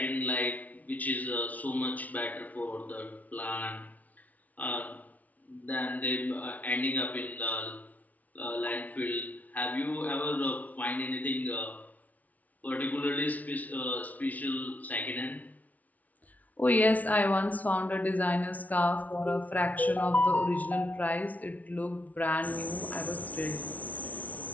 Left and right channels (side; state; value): right; late; 0.072 ms